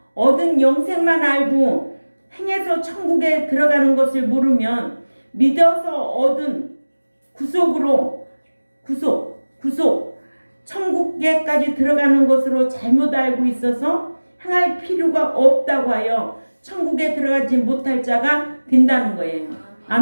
얻은 영생만 알고 행해서 천국에 들어가는 것을 모르면 믿어서 얻은 구속 천국에까지 들어가는 것으로 잘못 알고 있어서 행할 필요가 없다고 하여 천국에 들어가지 못할 자가 된다는 거예요.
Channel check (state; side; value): inverted; both; correlation -1.00